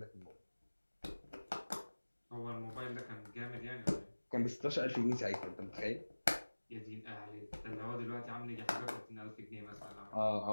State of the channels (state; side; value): inverted; both; correlation -1.00